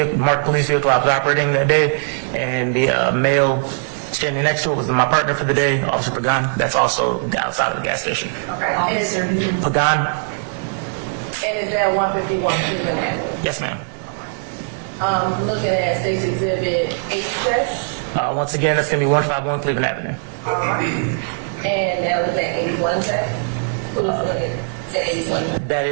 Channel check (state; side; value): silent; left; 66 dB below the other